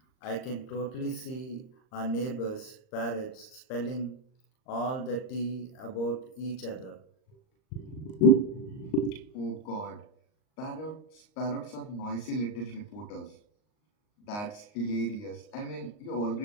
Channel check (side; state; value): right; late; 39 ms